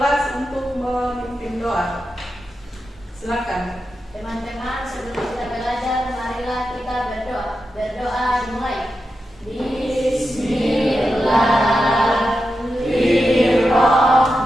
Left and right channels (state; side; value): normal; both; correlation 0.89